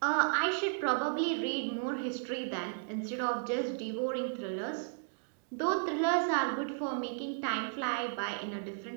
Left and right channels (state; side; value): silent; left; digital silence